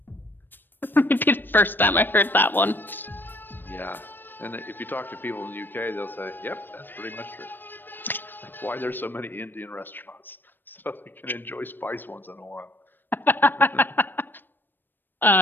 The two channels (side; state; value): right; late; 0.094 ms